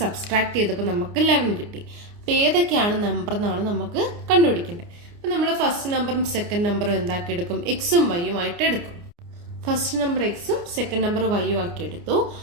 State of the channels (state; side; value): late; left; 29 ms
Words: സബ്സ്ട്രാക്ട് ചെയ്തപ്പോൾ നമുക്ക് 11 കിട്ടി. അപ്പൊ ഏതൊക്കെയാണ് നമ്പർ എന്നാണ് നമുക്ക് കണ്ടുപിടിക്കേണ്ടത്. അപ്പൊ നമ്മൾ ഫസ്റ്റ് നമ്പറും സെക്കൻഡ് നമ്പറും എന്താക്കി എടുക്കും? എക്സും വൈയും ആയിട്ട് എടുക്കും. ഫസ്റ്റ് നമ്പർ എക്സും സെക്കൻഡ് നമ്പർ വൈയും ആക്കി എടുത്തു.